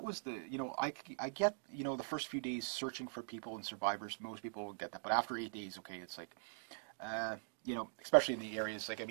was I get, the first few days searching for people and survivors, most people will get that. But after 8 days, okay, it's like, especially in the areas,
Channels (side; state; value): left; silent; digital silence